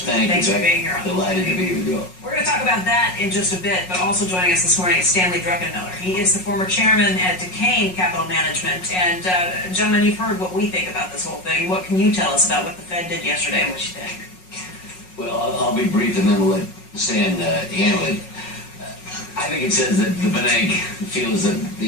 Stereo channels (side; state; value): right; late; 5.5 ms